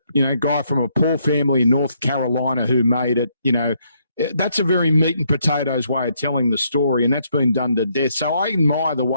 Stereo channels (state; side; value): inverted; both; correlation -0.73